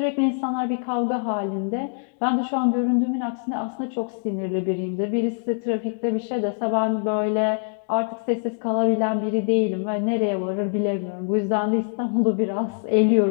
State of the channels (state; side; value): silent; right; digital silence